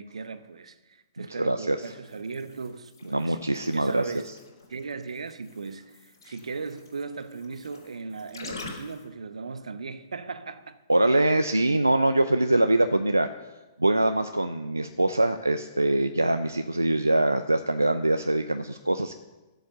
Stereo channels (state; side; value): inverted; both; correlation -0.93